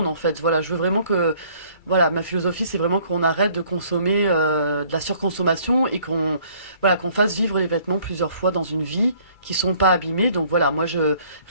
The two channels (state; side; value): late; right; 2.3 ms